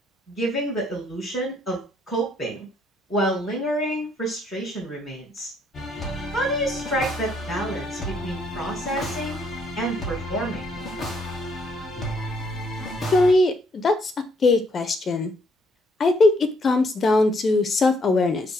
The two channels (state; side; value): normal; both; correlation 0.69